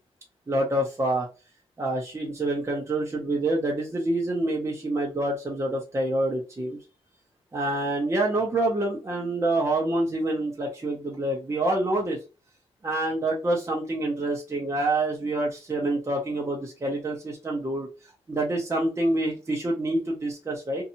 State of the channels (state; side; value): normal; both; correlation 0.70